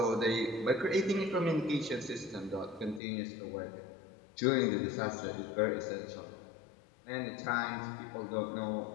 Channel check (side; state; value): right; drops out; at 3.0 s